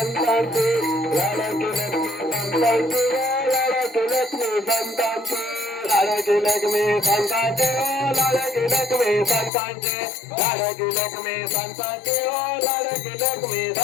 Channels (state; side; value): drops out; right; at 9.5 s